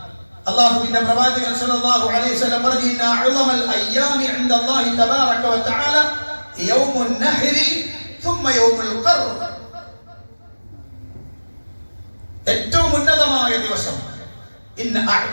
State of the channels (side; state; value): both; inverted; correlation -1.00